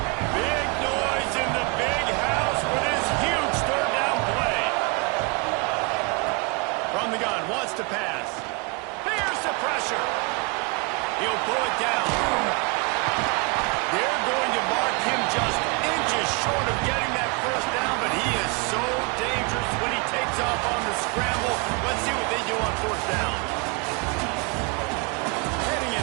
Big noise in the big house when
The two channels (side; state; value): left; quieter; 30.7 dB